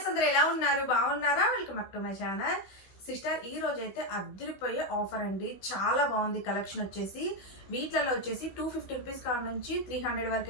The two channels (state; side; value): late; right; 16 ms